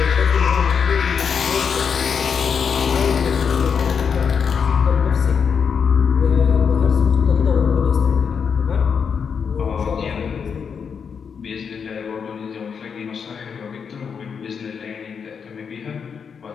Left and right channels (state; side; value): quieter; right; 6.5 dB